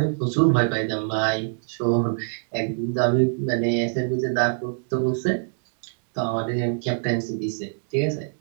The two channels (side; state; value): left; silent; digital silence